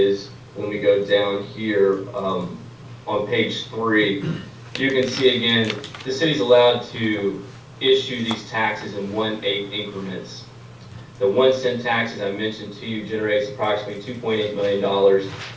when we go down here on page 3, you can see again, the city's allowed to issue these taxes in 1/8 increments. The 1-cent tax, as I mentioned to you, generates approximately $2.8 million,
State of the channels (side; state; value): both; identical; correlation 1.00